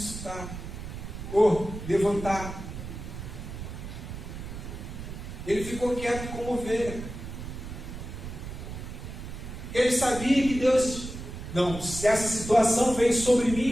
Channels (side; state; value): right; noise; rumble, 9 dB below the sound